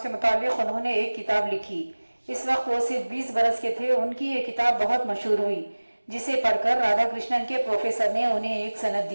मुताल्लिक़ उन्होंने एक किताब लिखी। इस वक्त वो सिर्फ 20 बरस के थे। उनकी ये किताब बहुत मशहूर हुई, जिसे पढ़कर राधा कृष्णन के प्रोफेसर ने उन्हें एक सनद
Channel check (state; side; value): inverted; both; correlation -1.00